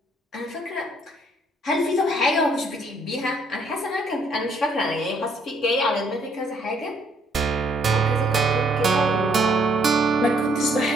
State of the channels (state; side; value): normal; both; correlation 0.67